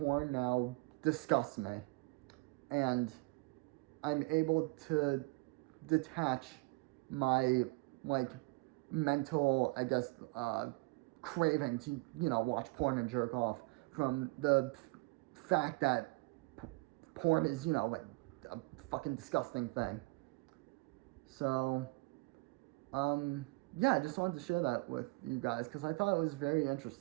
now disgusts me, and I'm able to detach my like mental, I guess, craving to, you know, watch porn and jerk off from the fact that porn is, you know, like a fucking disgusting thing. So, yeah, I just wanted to share that with you guys because I thought it was very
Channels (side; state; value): left; quieter; 25.3 dB